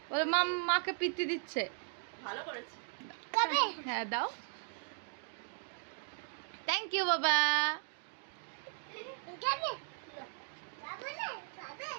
বলে মাকে পিত্তি দিচ্ছে। ভালো করেছি। হ্যাঁ দাও। থ্যাংক ইউ বাবা।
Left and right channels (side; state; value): left; silent; 53 dB below the other